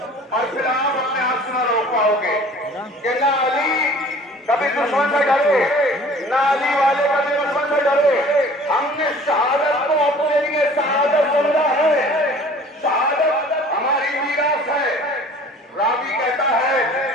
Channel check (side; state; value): both; normal; correlation 0.48